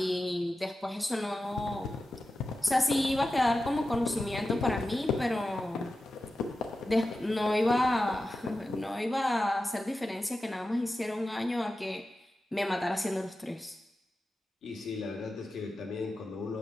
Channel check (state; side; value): normal; both; correlation 0.93